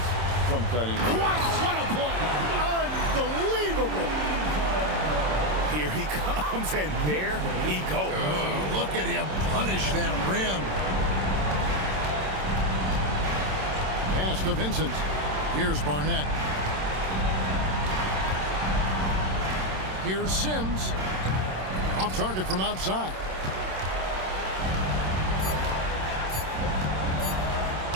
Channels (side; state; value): left; late; 27 ms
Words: from Cunningham. Wow, what a play! Unbelievable! Here he comes, and there he goes. Oh, look at him punish that rim. Pass to Vincent. Here's Barnett. Here's Sims. Off target from outside.